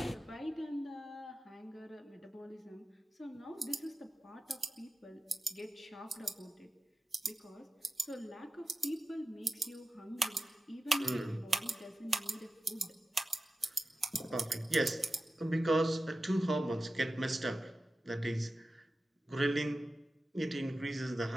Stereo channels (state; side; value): normal; both; correlation 0.94